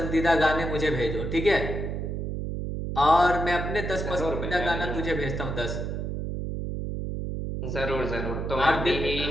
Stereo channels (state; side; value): noise; right; hum, 3 dB below the sound